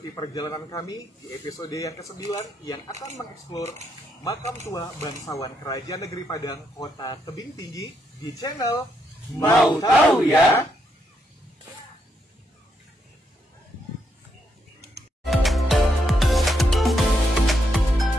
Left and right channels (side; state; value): both; normal; correlation 0.78